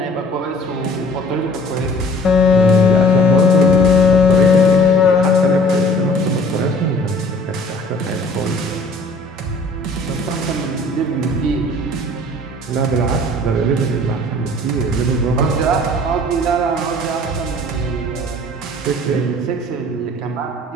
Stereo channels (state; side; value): normal; both; correlation 0.51